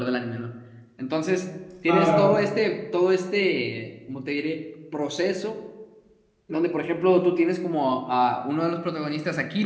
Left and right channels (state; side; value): identical; both; correlation 1.00